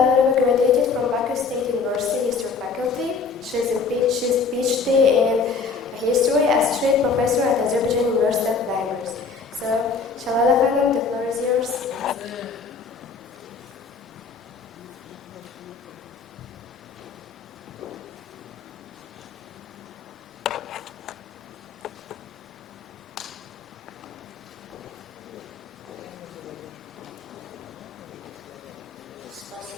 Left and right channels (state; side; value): quieter; right; 5.0 dB